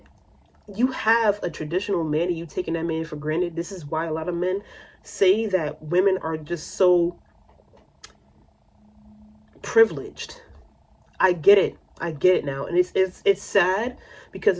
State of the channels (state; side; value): identical; both; correlation 1.00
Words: You have a traditional man and you taking that man for granted. This is why a lot of men say that women are just so privileged. I get it now. And it's sad because